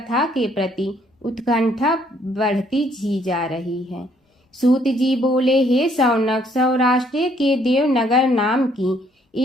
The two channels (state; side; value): normal; both; correlation 0.66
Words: के प्रति उत्कंठा बढ़ती ही जा रही है। सूत जी बोले, हे शौनक, सौराष्ट्र के देवनगर नाम की